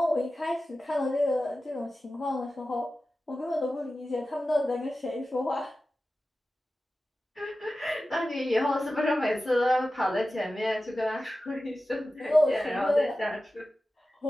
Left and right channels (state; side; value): normal; both; correlation 0.94